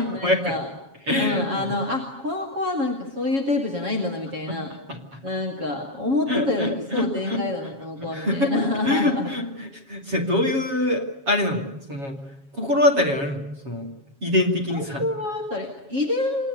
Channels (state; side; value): late; left; 7.3 ms